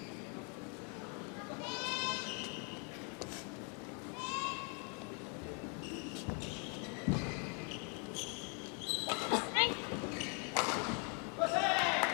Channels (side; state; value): right; quieter; 36.3 dB